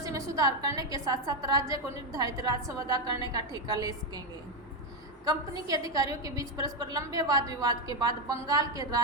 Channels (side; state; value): both; normal; correlation 0.06